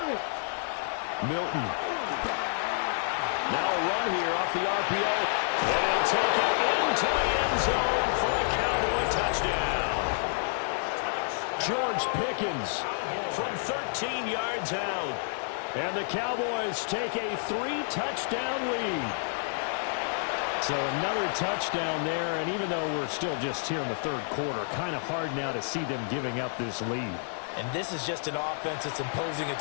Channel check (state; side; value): silent; right; 58 dB below the other